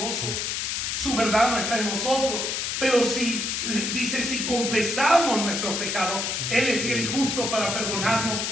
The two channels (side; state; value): left; noise; hiss, 1 dB below the sound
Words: Su verdad no está en nosotros. Pero si confesamos nuestros pecados, él es fiel y justo para perdonarnos